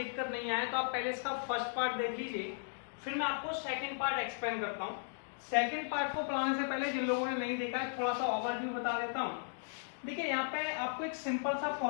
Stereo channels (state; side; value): silent; right; digital silence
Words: नहीं आए तो आप पहले इसका फर्स्ट पार्ट देख लीजिए, फिर मैं आपको सेकेंड पार्ट एक्सप्लेन करता हूँ। सेकेंड पार्ट को पढ़ाने से पहले जिन लोगों ने नहीं देखा है थोड़ा सा ओवरव्यू बता देता हूँ। देखिए, यहाँ पे आपको एक सिंपल सा